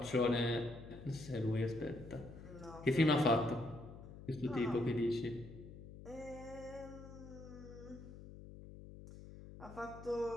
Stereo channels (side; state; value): left; noise; hum, 14 dB below the sound